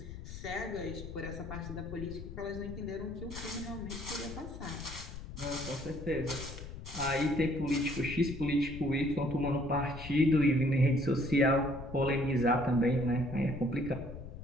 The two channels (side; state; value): left; noise; rumble, 11 dB below the sound